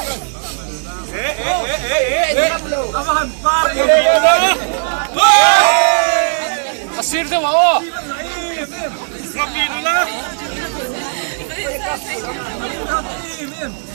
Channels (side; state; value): left; silent; digital silence